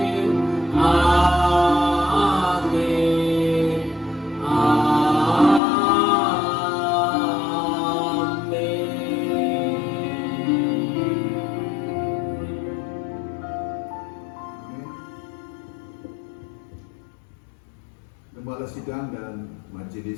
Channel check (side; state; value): right; drops out; at 5.6 s